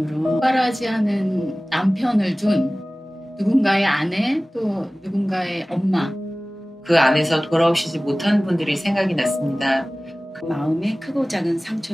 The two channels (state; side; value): normal; both; correlation 0.98